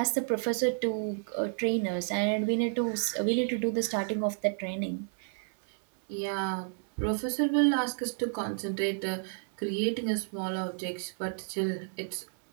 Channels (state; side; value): silent; left; 57 dB below the other